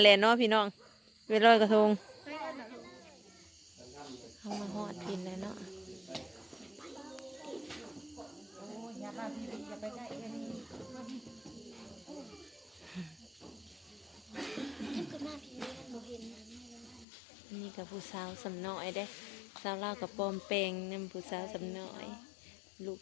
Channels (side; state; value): right; drops out; at 17.1 s